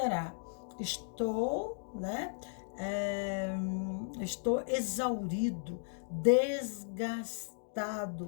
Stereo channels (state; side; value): silent; right; digital silence